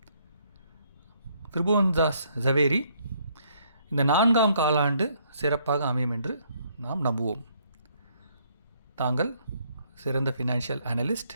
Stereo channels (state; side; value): inverted; both; correlation -0.68